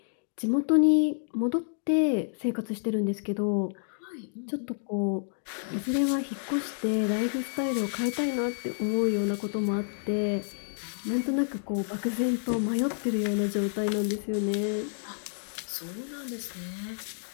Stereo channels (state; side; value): silent; right; digital silence